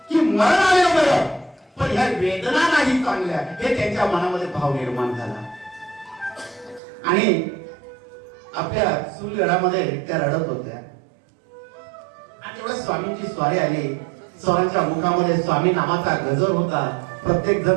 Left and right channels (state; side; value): drops out; left; at 6.8 s